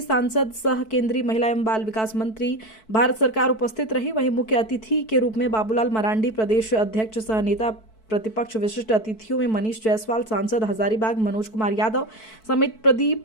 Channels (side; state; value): right; late; 4.6 ms